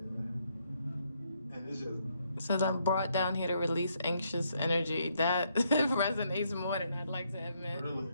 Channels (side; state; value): both; inverted; correlation -0.74